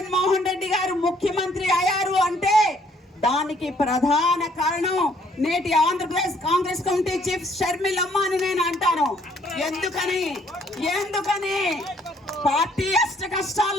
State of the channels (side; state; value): both; normal; correlation 0.64